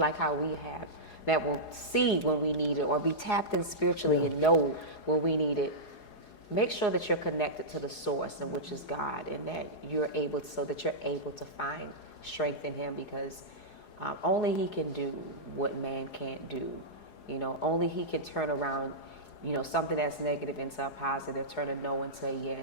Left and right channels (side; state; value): right; late; 4.8 ms